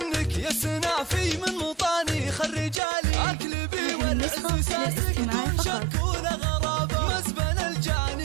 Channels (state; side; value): drops out; left; at 2.8 s